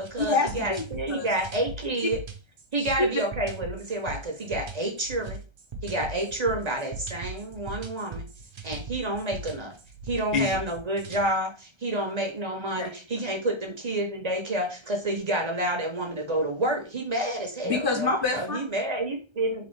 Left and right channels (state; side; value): late; left; 1.3 ms